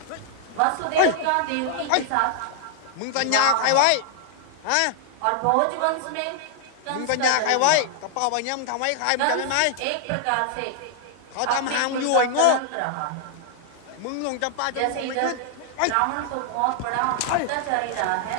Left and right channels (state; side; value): different; both; correlation 0.00